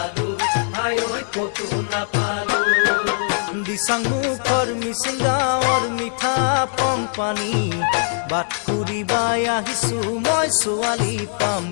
হাই কতো নাপালো দিচাং মুখৰ মিচিং গাঁৱৰ মিঠা পং পানী বাট ফুৰিবাই আহিছো মই ছোৱালী পাম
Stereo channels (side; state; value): right; silent; digital silence